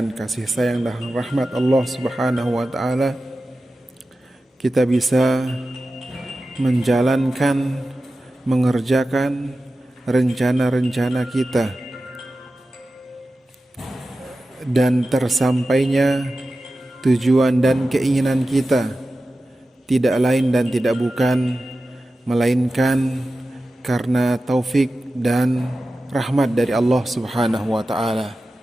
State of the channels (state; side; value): normal; both; correlation 0.94